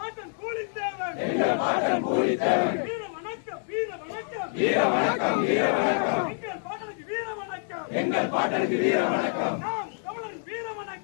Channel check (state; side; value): silent; right; 60 dB below the other